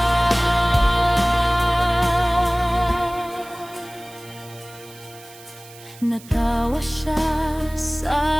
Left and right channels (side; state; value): right; noise; hiss, 21 dB below the sound